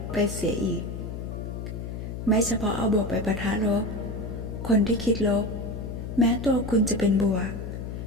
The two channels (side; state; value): left; noise; hum, 7 dB below the sound